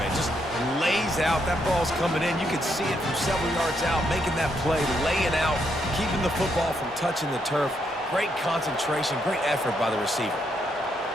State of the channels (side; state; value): both; normal; correlation 0.77